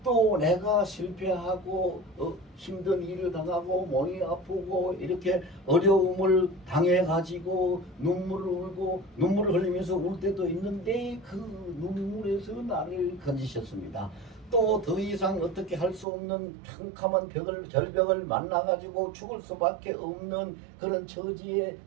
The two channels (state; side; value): drops out; left; at 16.1 s